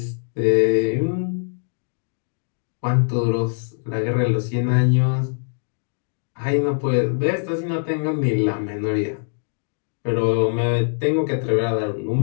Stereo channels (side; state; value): right; silent; digital silence